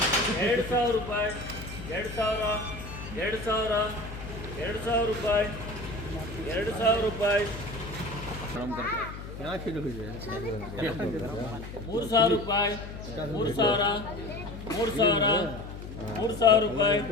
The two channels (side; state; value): left; noise; hum, 11 dB below the sound